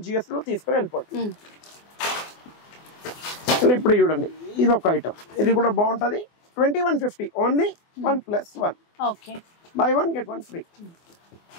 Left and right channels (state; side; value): late; right; 24 ms